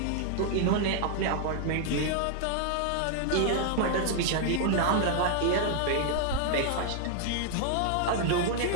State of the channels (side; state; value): both; different; correlation 0.00